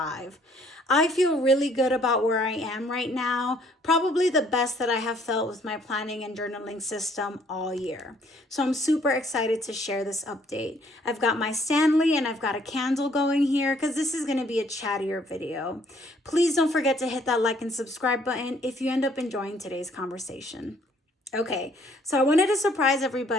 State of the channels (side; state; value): both; normal; correlation 0.63